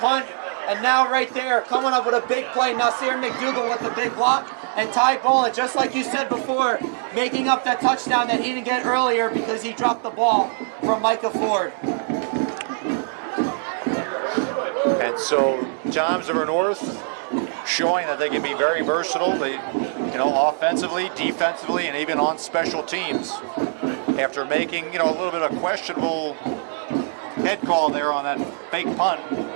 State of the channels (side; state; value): left; silent; digital silence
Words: And now right there, coming up with a big play, Nasir McDougal with the big block, and Ty Boland, just like you said before, making up that touchdown that he didn't get earlier because he dropped the ball from Micah Ford. And so Toms River North showing that they can be very versatile. They, offensively, defensively, and even on special teams. After making, a little bit of questionable head call there on that fake punt,